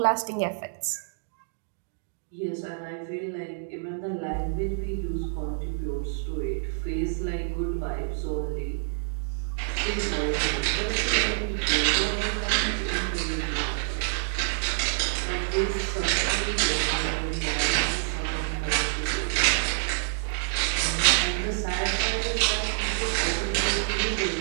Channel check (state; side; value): silent; left; digital silence